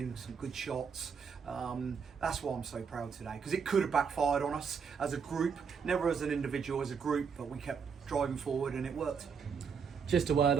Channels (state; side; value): quieter; left; 6.2 dB